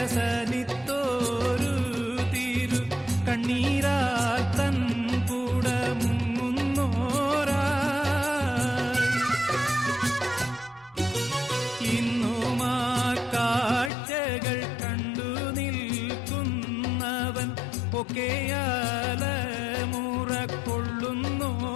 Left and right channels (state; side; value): drops out; right; at 13.9 s